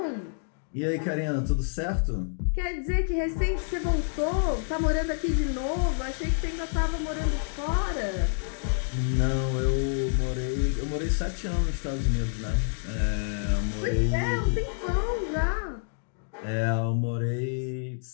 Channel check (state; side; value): silent; right; digital silence